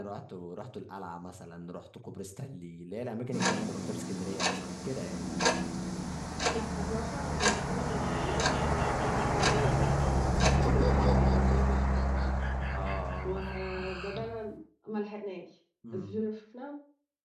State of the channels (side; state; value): both; identical; correlation 1.00